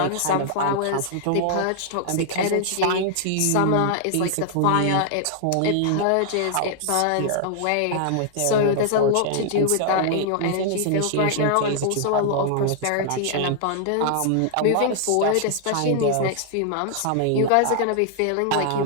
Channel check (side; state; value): both; different; correlation -0.01